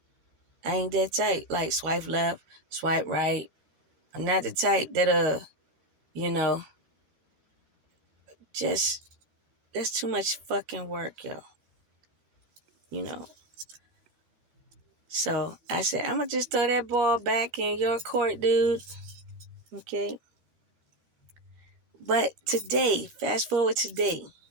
I ain't that type. Like swipe left, swipe right. I'm not the type that, just, that's too much fucking work, yo. So I said, I'm going to just throw that ball back in your court, dude. Okay? But today, fast forward today,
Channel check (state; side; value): late; left; 13 ms